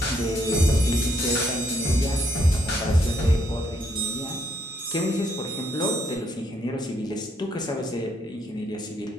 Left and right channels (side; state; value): both; normal; correlation 0.72